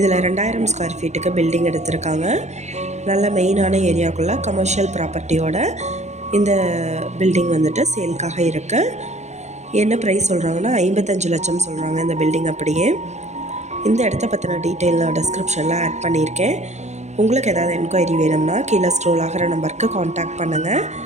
2000 ஸ்கொயர் ஃபீட்டுக்கு பில்டிங் எடுத்திருக்காங்க. நல்ல மெயினான ஏரியாவுக்குள்ளே கமர்ஷியல் ப்ராப்பர்ட்டியோட இந்த பில்டிங் வந்துட்டு சேல்க்காக இருக்குது. என்ன ப்ரைஸ் சொல்கிறாங்கன்னா 55 லட்சம் சொல்கிறாங்க இந்த பில்டிங். அப்படியே இந்த இடத்த பற்றின டீட்டெயில் நான் டிஸ்கிரிப்ஷனில் ஆட் பண்ணியிருக்கேன். உங்களுக்கு ஏதாவது என்கொயரி வேணும்னா கீழே ஸ்க்ரோல் ஆகிற நம்பருக்கு காண்டாக்ட் பண்ணுங்கள்.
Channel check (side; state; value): left; late; 0.33 ms